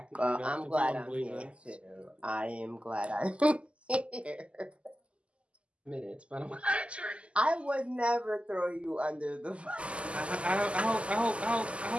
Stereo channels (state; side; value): late; left; 0.057 ms